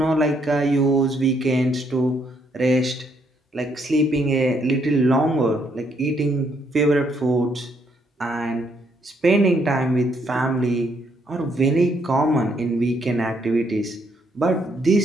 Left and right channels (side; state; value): both; normal; correlation 0.72